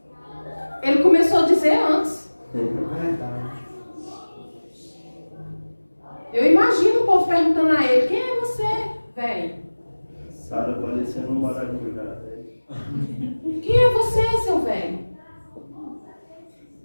Ele começou a dizer antes. É verdade. Eu imagino o povo perguntando a ele, quem é você, velho? Sara parecendo um maracujá. Quem é você, seu velho?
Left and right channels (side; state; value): both; inverted; correlation -1.00